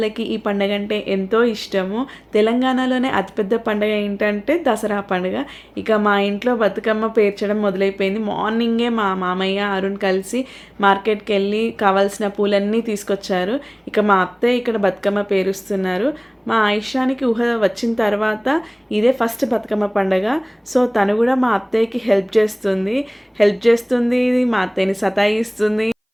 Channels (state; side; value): identical; both; correlation 1.00